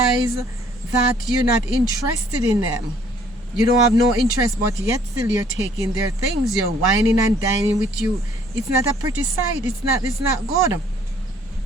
that you're not interested in them, you don't have no interest, but yet still you're taking their things. You're whining and dining with you. It's not a pretty sight. It's not good.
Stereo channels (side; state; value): both; normal; correlation 0.60